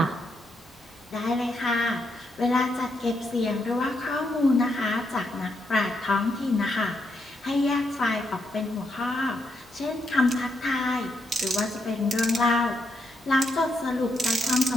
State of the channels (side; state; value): both; normal; correlation 0.80